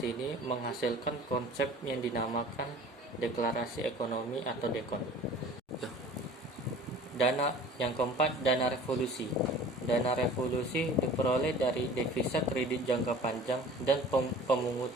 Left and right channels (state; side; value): normal; both; correlation 0.45